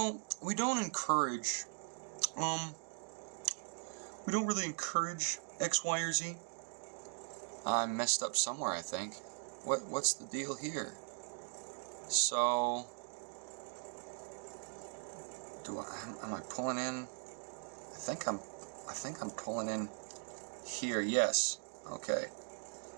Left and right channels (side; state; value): left; silent; 51 dB below the other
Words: we don't encourage, we don't really encourage X, Y, or Z. I messed up somewhere, I think. What's the deal here? So, am I pulling in? I think I'm pulling in here. Yes. Okay.